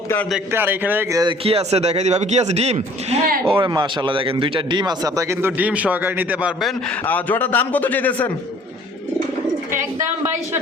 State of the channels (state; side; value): normal; both; correlation 0.54